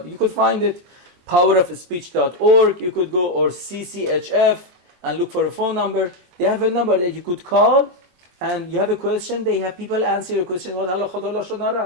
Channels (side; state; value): left; late; 23 ms